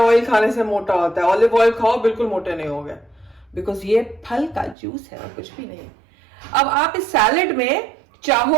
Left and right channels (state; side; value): drops out; left; at 4.8 s